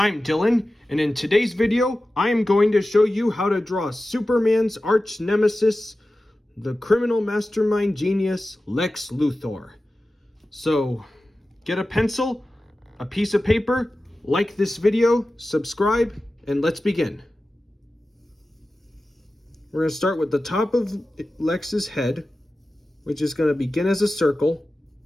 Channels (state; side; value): normal; both; correlation 0.95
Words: Dylan, and in today's video, I am going to show you how to draw Superman's arch nemesis, the criminal mastermind genius, Lex Luthor. So, get a pencil, a piece of paper, like this video, subscribe, and let's begin. We're going to start with the top of Lex's head, which is going to begin as a circle.